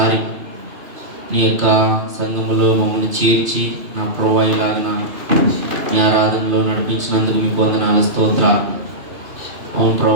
నీ యొక్క సంఘములో మమ్మల్ని చేర్చి నా ప్రభువా ఇలాగ మీ ఆరాధనలో నడిపించినందుకు మీకు వందనాలు, స్తోత్రాలు. అవును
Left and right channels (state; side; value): late; left; 2.8 ms